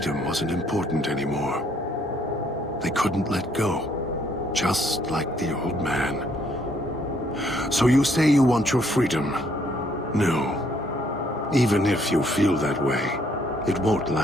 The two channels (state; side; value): normal; both; correlation 0.67